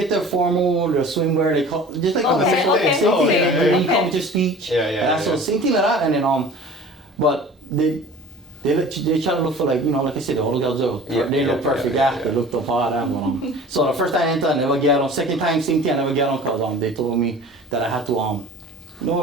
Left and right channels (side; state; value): both; normal; correlation 0.42